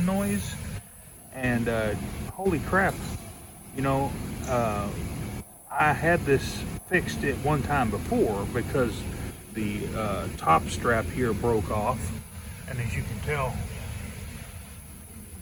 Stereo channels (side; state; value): both; identical; correlation 1.00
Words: noise, and holy crap, you know, I had this fixed at one time before because the top strap here broke off, and as you can tell,